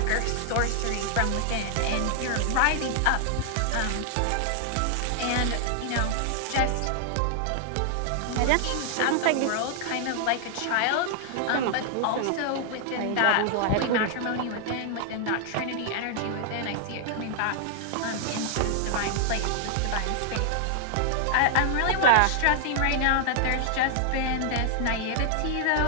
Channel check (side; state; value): both; different; correlation 0.00